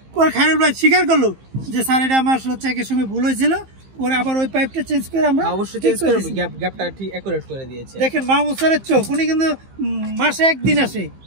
পরে খায়রুল ভাই স্বীকার করলো যে স্যার এটা আমার চেকের সময় ভুল হয়েছিল। পরে আবার ওই পাইপটা চেঞ্জ করে আমরা অবশ্যই চেঞ্জ করে গ্যাপটা ঠিক অ্যাকুরেট করে দিয়েছে। দেখেন মাহমুদ স্যারের চোখ, উনি কিন্তু মাসে একদিন আসে।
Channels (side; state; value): left; late; 15 ms